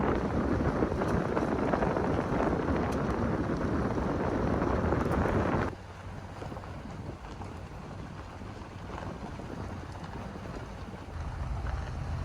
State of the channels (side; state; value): both; identical; correlation 1.00